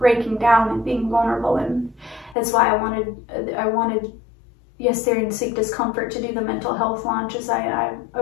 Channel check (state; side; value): drops out; right; at 2.4 s